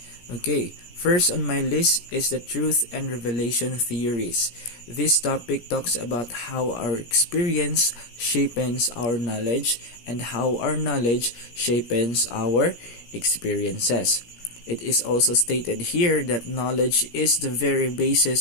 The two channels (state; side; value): late; right; 17 ms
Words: Okay, first on my list is the truth and revelation theories. This topic talks about how our experience shapes our knowledge and how our knowledge shapes our experiences. It is also stated here that knowledge is the very